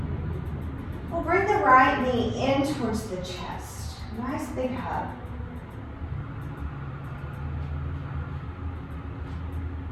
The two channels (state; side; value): identical; both; correlation 1.00